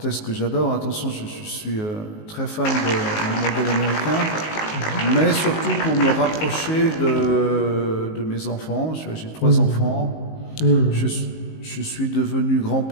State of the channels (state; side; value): late; right; 19 ms